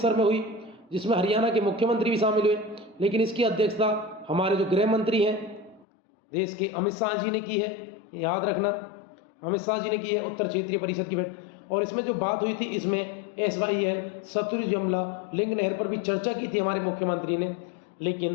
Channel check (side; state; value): right; drops out; at 5.9 s